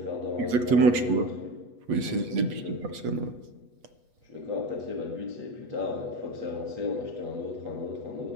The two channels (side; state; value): left; late; 8.2 ms